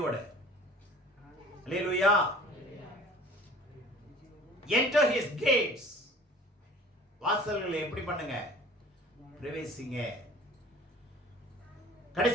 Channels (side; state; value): both; normal; correlation 0.46